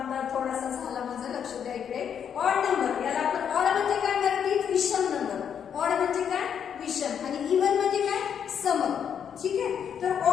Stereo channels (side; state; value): right; quieter; 8.1 dB